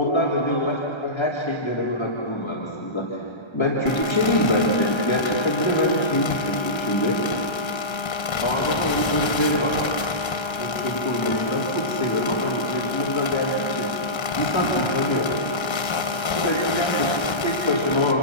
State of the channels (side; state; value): right; late; 1.3 ms